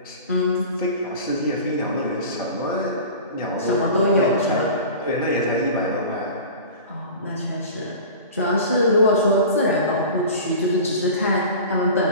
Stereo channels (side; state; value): both; inverted; correlation -0.36